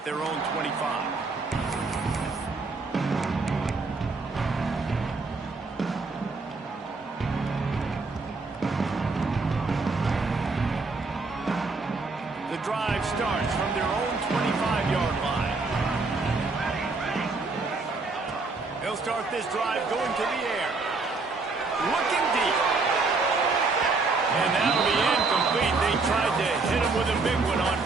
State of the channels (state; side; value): quieter; left; 3.9 dB